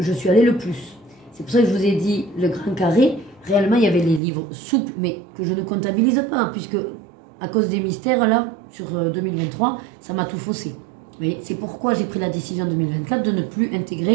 suis allée le plus. C'est pour ça que je vous ai dit le grand carré. Réellement, il y avait les livres souples, mais que je ne comptabilise pas, puisque à cause des mystères, là, sur 2023, ça m'a tout faussé. C'est pourquoi j'ai pris la décision en 2024 de ne plus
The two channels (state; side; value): drops out; left; at 4.2 s